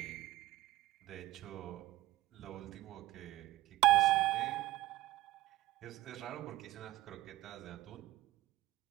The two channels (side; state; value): left; quieter; 17.1 dB